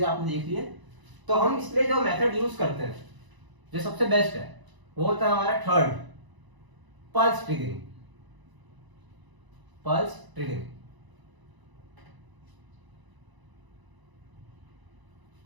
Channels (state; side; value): late; left; 1.0 ms